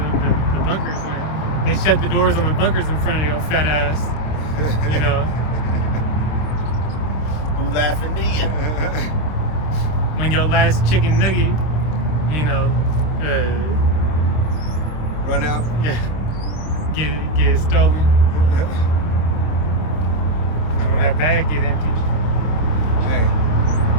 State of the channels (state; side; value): late; right; 26 ms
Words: the bunkers when they shut the doors on the bunkers in front of your fat ass. Who laughing then? When your last chicken nugget, Run out. yeah, get stolen. And when that bag get empty, Hey.